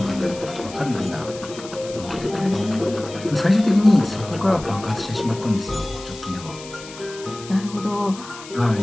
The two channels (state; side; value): noise; left; hiss, 16 dB below the sound